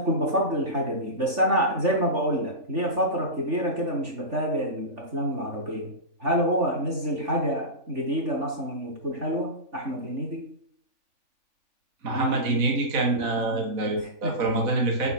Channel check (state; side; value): late; left; 3.4 ms